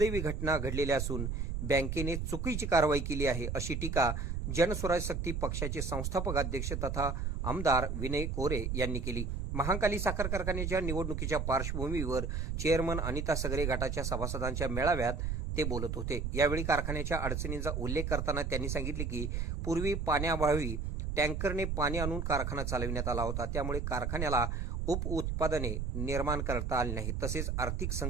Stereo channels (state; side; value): noise; right; rumble, 2 dB below the sound